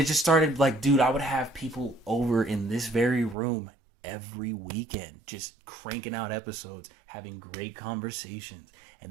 just started like, dude, I would have people over in this very room every weekend, just cranking out episodes, having great conversations.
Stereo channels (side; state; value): left; drops out; at 3.4 s